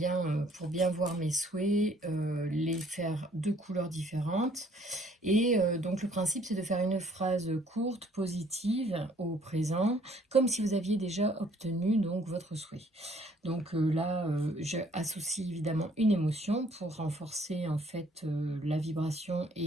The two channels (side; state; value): both; normal; correlation 0.61